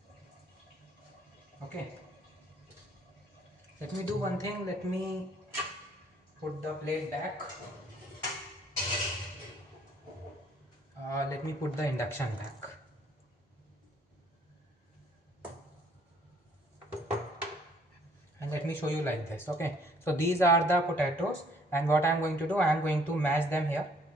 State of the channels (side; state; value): both; normal; correlation 0.61